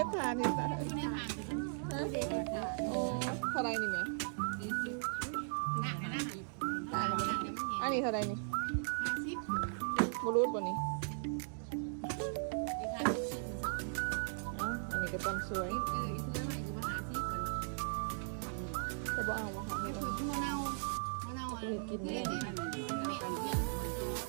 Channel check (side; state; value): left; silent; digital silence